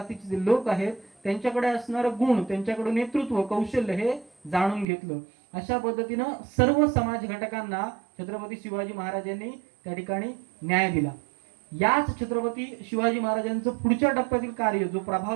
जे लोक आहेत त्यांच्याकडे असणारं गुण, त्यांच्याकडे नेतृत्व कौशल्य हे जाणून घेतलं. अशा पद्धतीनं सर्व समाज घटकांना छत्रपती शिवाजी महाराजांनी त्या ठिकाणी न्याय दिला. याच छत्रपती शिवाजी महाराजांचं पुढच्या टप्प्यातील कार्य जो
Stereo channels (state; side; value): drops out; left; at 4.9 s